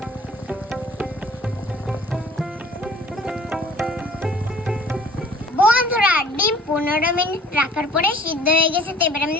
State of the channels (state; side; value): normal; both; correlation 0.52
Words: বন্ধুরা, ডিম 15 মিনিট রাখার পরে সিদ্ধ হয়ে গেছে। তো এবার আমি